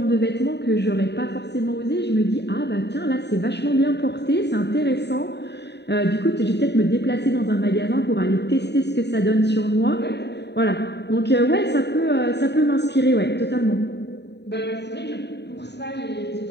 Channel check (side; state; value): right; late; 0.50 ms